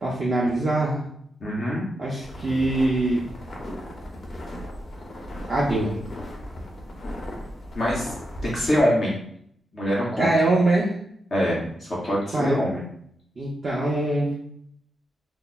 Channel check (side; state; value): both; normal; correlation 0.85